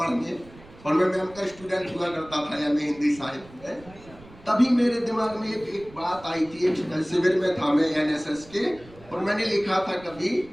और मैं मैम का स्टूडेंट हुआ करता था एमए हिंदी साहित्य में, तभी मेरे दिमाग में एक बात आई थी। एक शिविर में था मैं एनएसएस के, और मैंने लिखा था कभी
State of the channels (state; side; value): noise; right; rumble, 22 dB below the sound